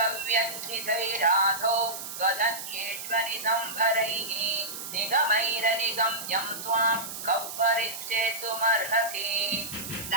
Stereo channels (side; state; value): right; noise; hiss, 8 dB below the sound